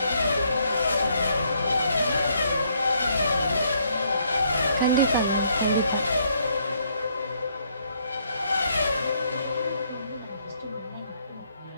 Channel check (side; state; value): both; inverted; correlation -0.70